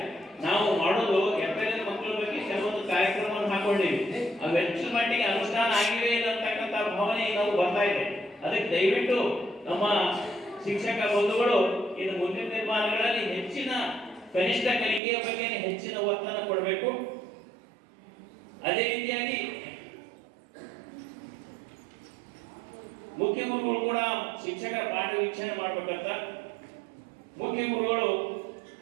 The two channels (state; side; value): drops out; left; at 15.0 s